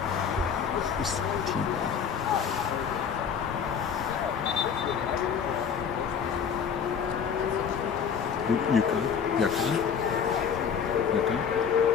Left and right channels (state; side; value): quieter; right; 7.0 dB